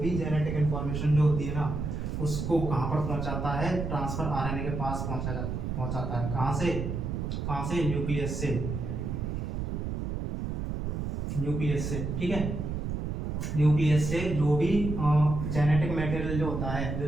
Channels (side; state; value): right; noise; rumble, 3 dB below the sound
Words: जेनेटिक इंफॉर्मेशन जो होती है ना उसको कहां पर पहुंचाता है, ट्रांसफर आरएनए के पास पहुंचाता है। कहां से, न्यूक्लियस से, न्यूक्लियस से। ठीक है, न्यूक्लियस से जो भी जेनेटिक मटेरियल जो होता है,